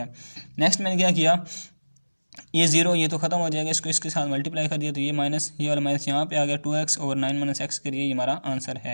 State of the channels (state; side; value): inverted; both; correlation -1.00